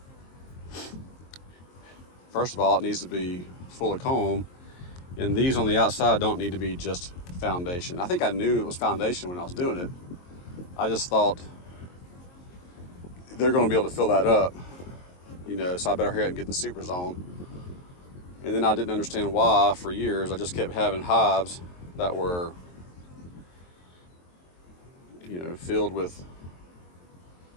first of all, it needs to be full of comb, and these on the outside don't need to be just foundation. I think I knew it was foundation when I was doing it. I just thought they're going to be able to fill that up, so I better hurry up and get the supers on. And then I didn't understand why for years I just kept having hives that were filled with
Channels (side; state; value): right; late; 22 ms